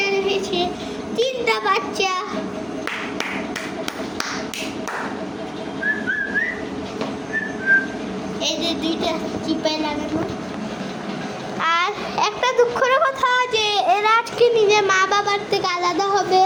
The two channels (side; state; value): both; identical; correlation 1.00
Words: রয়েছে, 3টা বাচ্চা। এই যে 2টা চিপায় লাগানো। আর একটা দুঃখের কথা যে এরা আজকে নিজের মা বাবার থেকে আলাদা হবে।